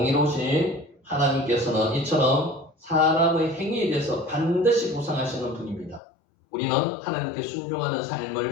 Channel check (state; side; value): drops out; right; at 6.0 s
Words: 하나님께서는 이처럼 사람의 행위에 대해서 반드시 보상하시는 분입니다. 우리는 하나님께 순종하는 삶을